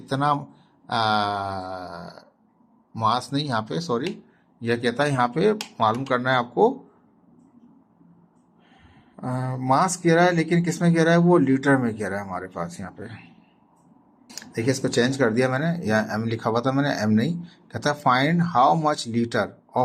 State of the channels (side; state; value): both; identical; correlation 1.00